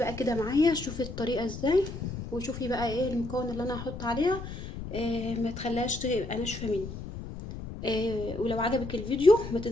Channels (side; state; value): left; noise; rumble, 9 dB below the sound